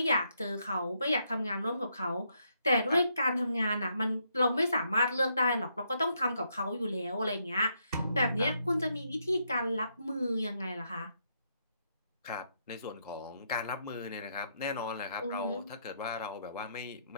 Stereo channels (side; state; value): both; inverted; correlation -0.77